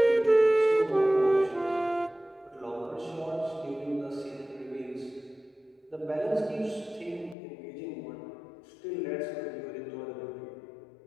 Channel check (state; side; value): drops out; right; at 7.4 s